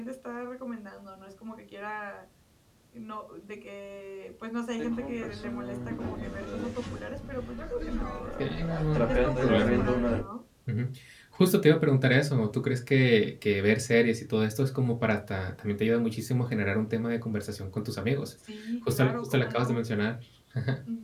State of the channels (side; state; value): both; identical; correlation 1.00